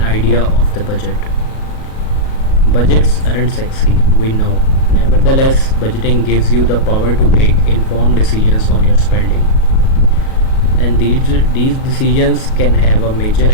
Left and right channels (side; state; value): right; late; 37 ms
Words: idea of the budget. Budgets aren't sexy, we know. Nevertheless, budgeting gives you the power to make informed decisions on your spending. And these decisions can have a major